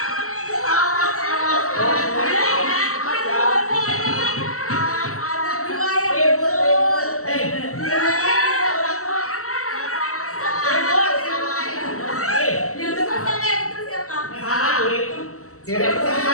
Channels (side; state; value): right; late; 0.64 ms